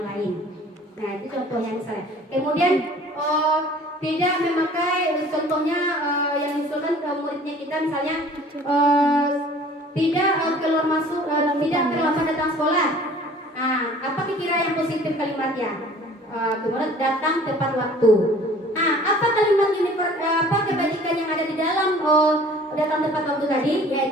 lain. Nah itu contohnya misalnya. Kemudian tidak memakai, contohnya yang diusulkan ke muridnya kita misalnya tidak keluar masuk, tidak terlambat datang sekolah. Nah, apa kira yang positif kalimatnya? Kemudian datang tepat waktu. Nah, apa kalimat ini? Apa kebajikan yang ada di dalam datang tepat waktu tadi?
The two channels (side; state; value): both; normal; correlation 0.49